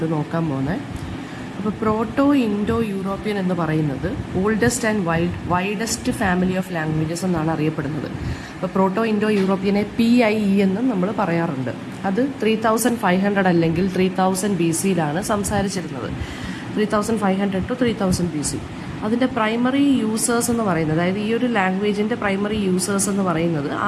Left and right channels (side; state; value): both; identical; correlation 1.00